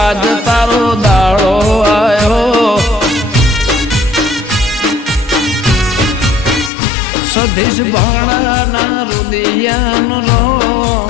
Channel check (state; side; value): drops out; right; at 6.7 s